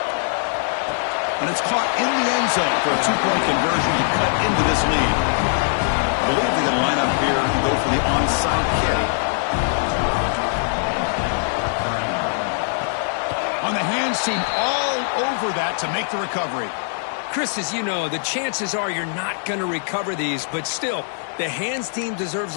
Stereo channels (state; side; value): silent; right; digital silence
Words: And it's caught in the end zone for a 2-point conversion to cut into this lead. I believe they're going to line up here and go for the onside kick. On the hands team, all over that to make the recovery. Chris, as you know, the chances are you're not going to recover these, but still, the hands team deserves